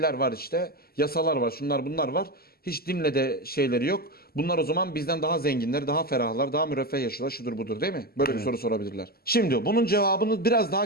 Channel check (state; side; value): late; right; 0.45 ms